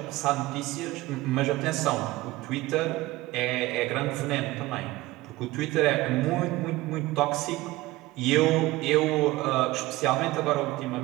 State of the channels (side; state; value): left; quieter; 19.0 dB